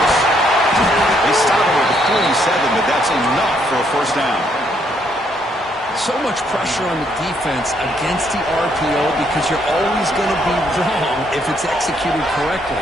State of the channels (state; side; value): normal; both; correlation 0.71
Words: They stop him at the 47, but that's enough for a first down. So much pressure on the defense against the RPO because you're always going to be wrong if it's executed correctly.